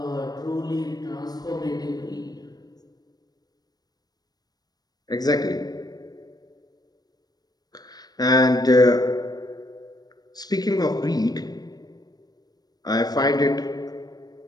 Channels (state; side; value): late; right; 0.19 ms